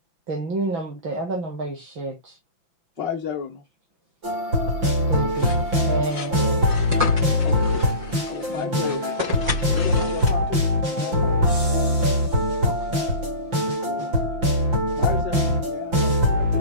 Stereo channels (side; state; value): left; late; 5.9 ms